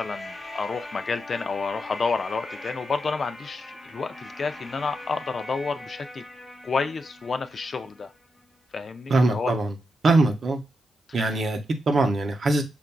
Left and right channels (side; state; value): both; normal; correlation 0.85